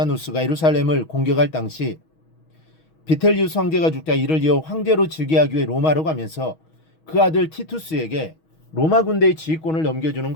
예루살렘을 공격할 당시 비텔리우스 황제가 죽자 이를 이어 황제로 즉위하기 위해 로마로 가면서 그 아들 티투스에게 로마 군대의 지휘권을 넘겨주는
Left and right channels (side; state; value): right; late; 6.3 ms